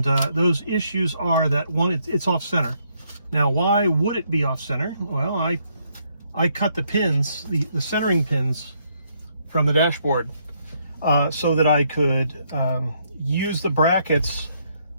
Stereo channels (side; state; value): both; inverted; correlation -0.71